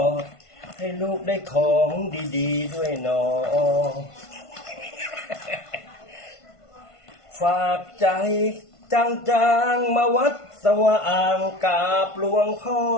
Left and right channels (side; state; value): right; late; 1.5 ms